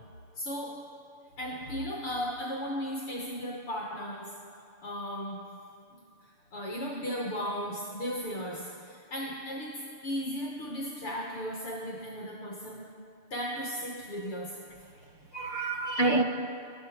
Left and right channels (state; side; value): late; right; 6.8 ms